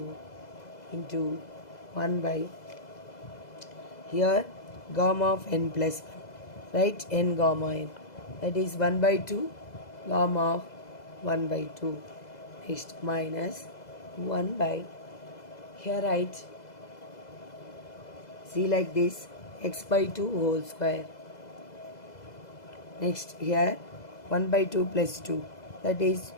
into 1 by here gamma of n plus 1, right, n gamma n, that is 1 by 2 gamma of 1 by 2. Next, minus 1 by here write, see like this, x by 2 whole square. Next, here 1 by 2 plus 2, that is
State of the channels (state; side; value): late; right; 2.0 ms